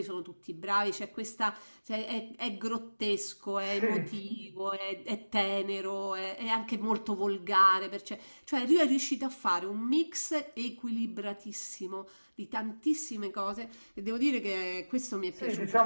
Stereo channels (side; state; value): both; inverted; correlation -1.00